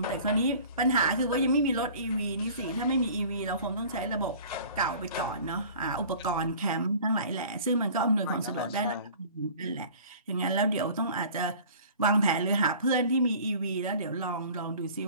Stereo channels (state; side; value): inverted; both; correlation -0.46